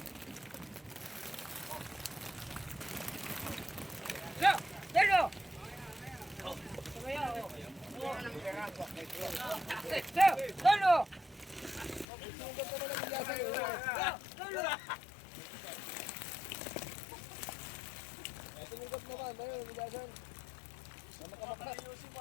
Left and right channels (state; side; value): drops out; right; at 12.1 s